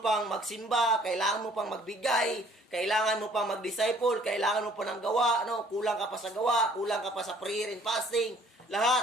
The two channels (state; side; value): normal; both; correlation 0.57